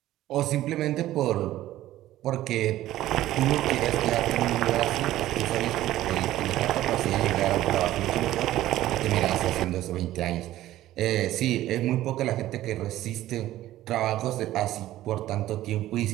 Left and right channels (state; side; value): quieter; left; 14.5 dB